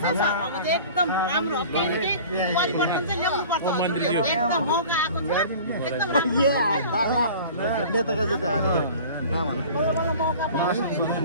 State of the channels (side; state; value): both; inverted; correlation -0.42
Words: सर अब एकदम राम्रो केही परिवर्तन चाहिँ ल्याउनु पर्छ एकदम मौका आएको छ एकदम राम्रो